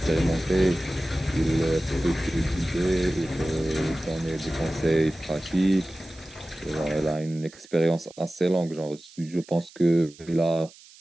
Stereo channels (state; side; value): noise; right; hiss, 23 dB below the sound